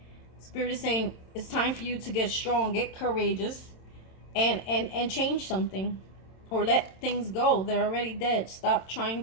Spirit is saying it's time for you to get strong, get courageous, and change something. Or let things go. They're already dead. Stop trying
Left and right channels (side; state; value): right; late; 27 ms